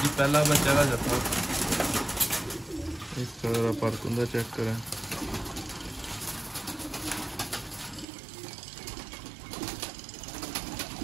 पहला बच्चा का जाता इस तरह पर चेक करें।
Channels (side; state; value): left; drops out; at 8.1 s